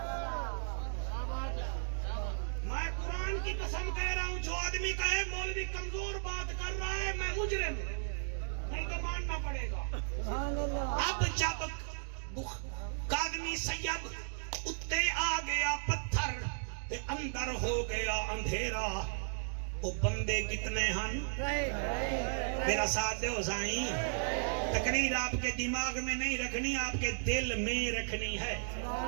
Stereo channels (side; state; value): left; silent; digital silence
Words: میں قرآن کی قسم کہہ رہا ہوں جو آدمی کہے مولوی کمزور بات کر رہا ہے میں مجرم نہیں تو ماننا پڑے گا. اب جب قادمی سید اتے آ گیا پتھر تے اندر ہو گیا اندھیرا. وہ بندے کتنے ہن میرا ساتھ دے ہو سائیں. تقریر آپ کے دماغ میں نہیں رکھنی آپ کے دل میں رکھنی ہے.